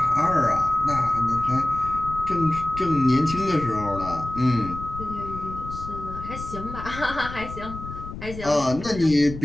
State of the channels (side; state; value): left; noise; rumble, 11 dB below the sound